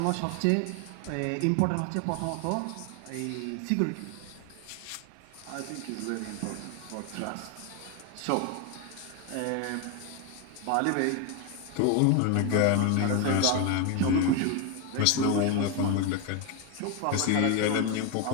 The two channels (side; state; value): both; different; correlation 0.01